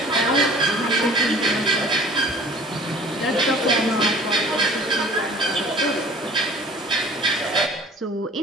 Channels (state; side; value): normal; both; correlation 0.47